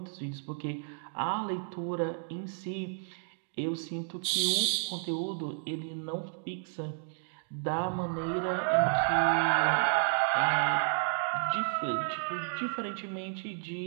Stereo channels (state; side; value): silent; left; digital silence